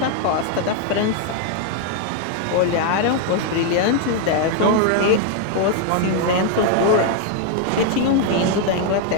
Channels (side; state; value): both; different; correlation 0.00